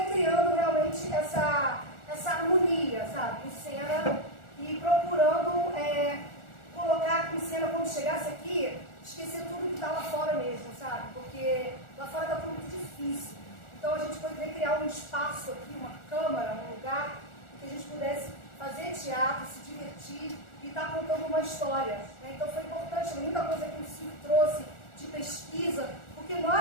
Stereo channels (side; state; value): right; late; 1.4 ms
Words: criando realmente essa harmonia, sabe, em cena, e procurando colocar em cena, quando chegasse aqui, esquecer tudo que está lá fora mesmo, sabe? Porque lá fora está tudo muito difícil. Então a gente poderia criar um espaço aqui, uma câmara, um lugar, que a gente pudesse fazer teatro, se divertir e estar contando uma história, né? Então foi importante, muita coisa que o Silvio trouxe de pesquisa, porque